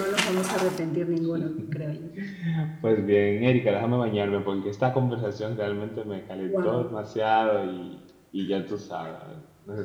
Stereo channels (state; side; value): identical; both; correlation 1.00